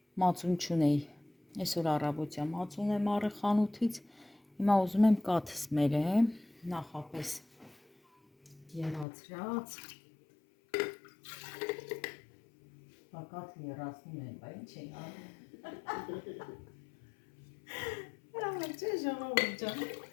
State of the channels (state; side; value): drops out; right; at 9.1 s